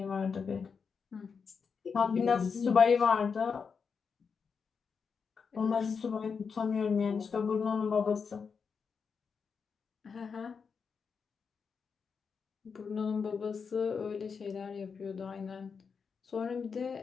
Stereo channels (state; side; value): quieter; right; 5.8 dB